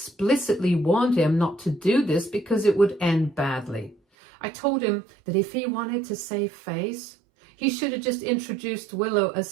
warned him not to do this because it would end badly. I told him that if he wanted to save face, he should have just introduced Willow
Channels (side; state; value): left; drops out; at 4.0 s